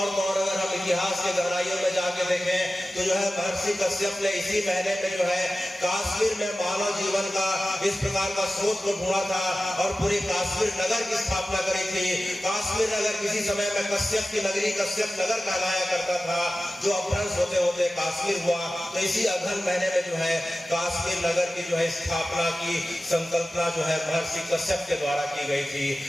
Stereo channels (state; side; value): normal; both; correlation 0.95